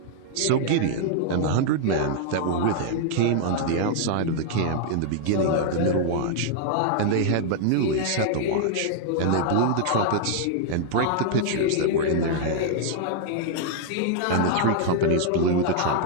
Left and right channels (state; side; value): different; both; correlation -0.01